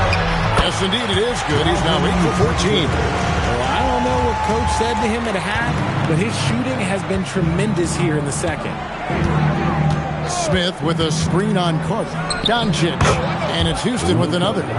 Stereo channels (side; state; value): both; identical; correlation 1.00